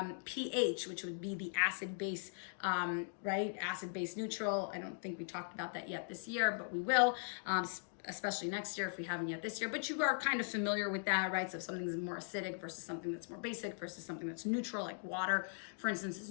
pH, which would be the acid-base, right? Acid-base neutral. I don't think we talked about that yet this year, but we will. Especially next year if we haven't yet this year, but you are kind of familiar with that, right? So if something's more acidic versus something that's more basic versus something that's neutral, like water, for instance, is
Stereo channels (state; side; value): silent; right; digital silence